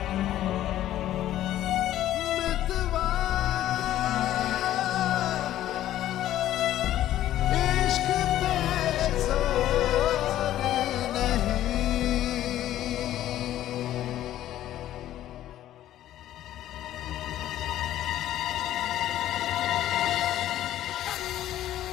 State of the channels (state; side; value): quieter; right; 13.0 dB